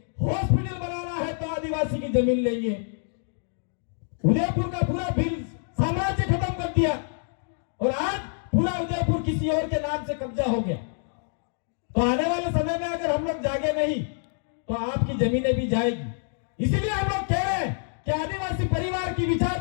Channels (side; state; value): right; silent; digital silence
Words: हॉस्पिटल बनाना है तो आदिवासी की जमीन लेंगे। उदयपुर का पूरा भील साम्राज्य खत्म कर दिया और आज पूरा उदयपुर किसी और के नाम से कब्जा हो गया। तो आने वाले समय में अगर हम लोग जागे नहीं तो आपकी जमीनें भी जाएगी। इसीलिए हम लोग कह रहे हैं कि आदिवासी परिवार की